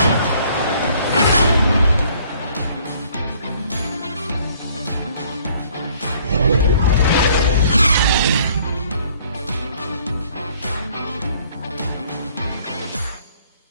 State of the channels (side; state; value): both; inverted; correlation -0.59